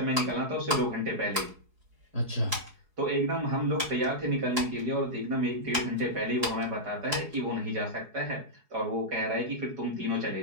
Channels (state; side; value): late; left; 4.7 ms